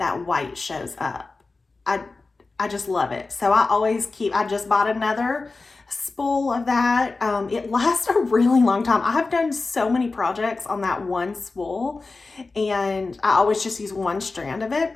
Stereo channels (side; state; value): right; quieter; 3.7 dB